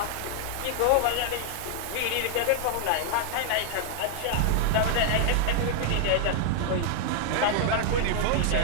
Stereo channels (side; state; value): both; different; correlation 0.00